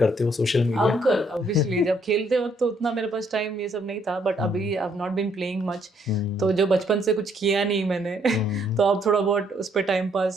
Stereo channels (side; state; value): both; normal; correlation 0.69